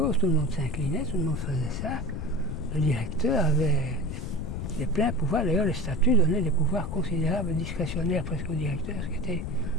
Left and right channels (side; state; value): left; noise; rumble, 5 dB below the sound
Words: tout le monde s'inclinait, tout le monde faisait ça. Le directeur avait des pleins pouvoirs, d'ailleurs les statuts donnaient des pouvoirs considérables, discrétionnaires presque au directeur, ce qui n'était